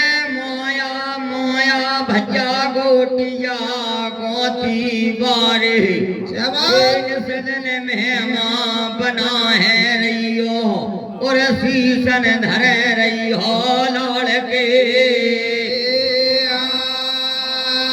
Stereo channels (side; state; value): both; identical; correlation 1.00